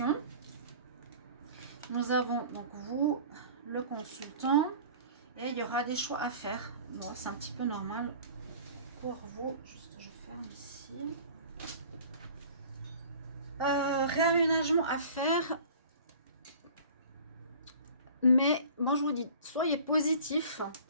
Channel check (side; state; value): both; inverted; correlation -0.45